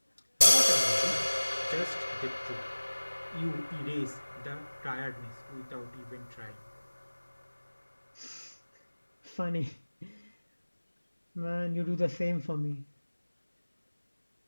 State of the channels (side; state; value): both; inverted; correlation -1.00